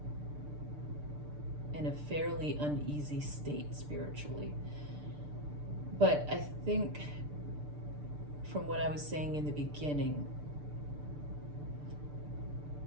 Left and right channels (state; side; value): late; left; 6.8 ms